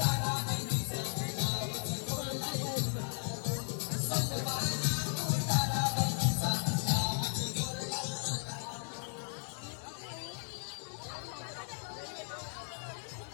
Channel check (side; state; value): right; silent; 54 dB below the other